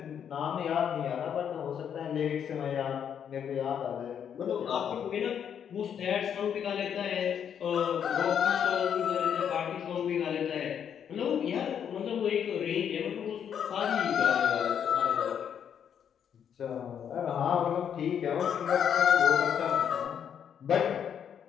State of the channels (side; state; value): right; quieter; 8.4 dB